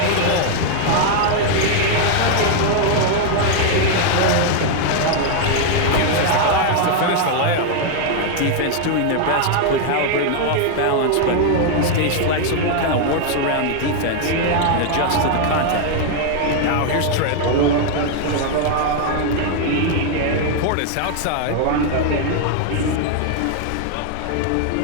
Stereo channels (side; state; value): both; different; correlation 0.00